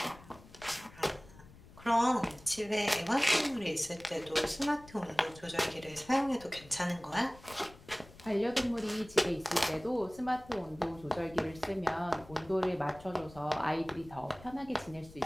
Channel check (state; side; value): noise; left; rumble, 21 dB below the sound